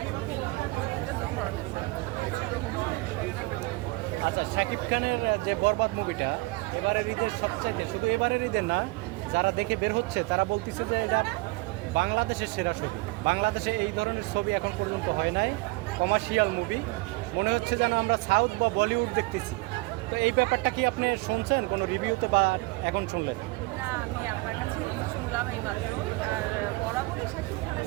এটা দু ধরনের সিনেমা। আচ্ছা, শাকিব খানের যে বরবাদ মুভিটা এবারের ঈদের সবচাইতে, শুধু এবারের ঈদের না, যারা দেখে বের হচ্ছে তারা বলতেছে যে এটা বাংলাদেশের সেরা ছবি। বাংলাদেশে এই ধরনের ছবি এখন পর্যন্ত হয় নাই, কমার্শিয়াল মুভি। মনে হচ্ছে যেন আমরা সাউথ বা বলিউড দেখতেছি। তো এই ব্যাপারটা কি আপনি শুনছেন কোনো রিভিউতে বা এখন শুনলেন? না, আমি আপনার কাছে শুনলাম এই মাত্র। আর বরাবরই শাকিব খানের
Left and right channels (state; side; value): quieter; left; 23.9 dB